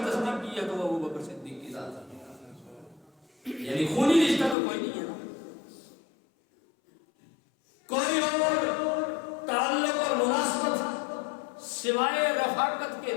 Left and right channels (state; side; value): drops out; right; at 4.5 s